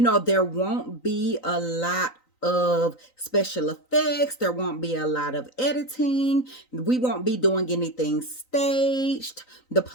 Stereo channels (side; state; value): right; late; 3.9 ms